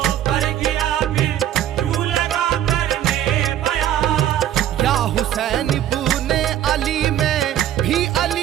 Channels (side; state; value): left; quieter; 11.6 dB